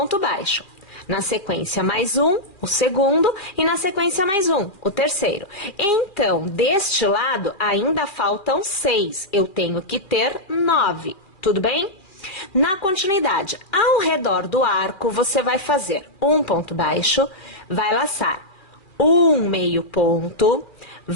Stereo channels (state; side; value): late; right; 2.4 ms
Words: baixo. Na sequência, mais um, o segundo, e na sequência, mais um, o terceiro. Então, deste lado, ainda faltam 6. Eu tenho que ter 9. Tudo bem? Na continuidade, ao redor do arco, você vai fazer um ponto baixo, vai laçar um meio ponto,